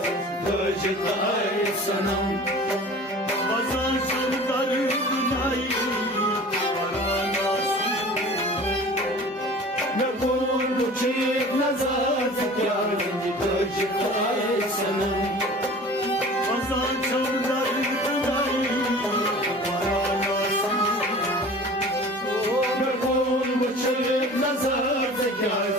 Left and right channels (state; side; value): normal; both; correlation 0.42